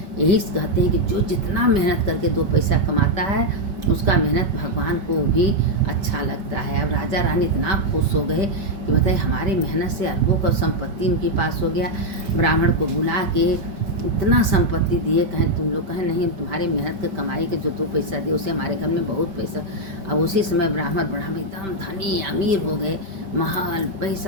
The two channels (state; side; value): late; left; 5.1 ms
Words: यही कहते हैं कि जो जितना मेहनत करके 2 पैसा कमाता है उसका मेहनत भगवान को भी अच्छा लगता है। अब राजा रानी इतना खुश हो गए कि बताइए हमारी मेहनत से अरबों का संपत्ति उनके पास हो गया। ब्राह्मण को बुला के इतना संपत्ति दिए। कहें तुम लोग, कहें नहीं, तुम्हारे मेहनत के कमाई के जो 2 पैसा दिए उसे हमारे घर में बहुत पैसा। अब उसी समय ब्राह्मण एकदम धनी अमीर हो गए, महल